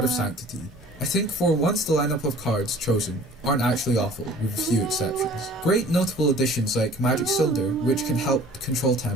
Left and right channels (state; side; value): normal; both; correlation 0.48